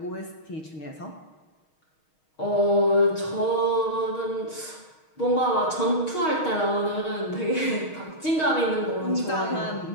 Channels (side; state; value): right; late; 6.4 ms